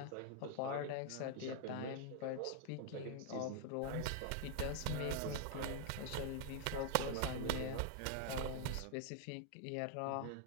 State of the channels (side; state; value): both; different; correlation 0.00